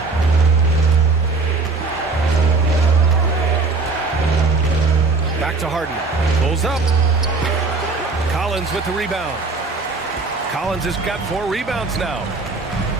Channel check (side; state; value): left; quieter; 3.8 dB